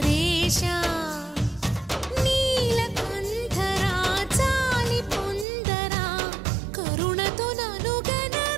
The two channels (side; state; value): left; drops out; at 5.5 s